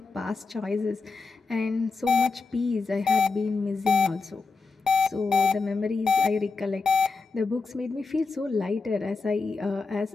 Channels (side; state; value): right; quieter; 4.3 dB